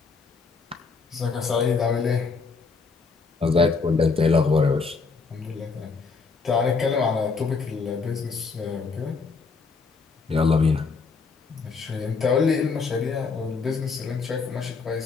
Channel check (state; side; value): quieter; right; 4.6 dB